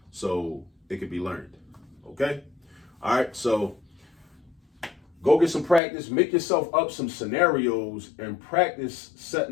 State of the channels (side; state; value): right; drops out; at 5.8 s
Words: so it can be learned. Okay. All right. So go get some practice, make yourself up some scenarios and practice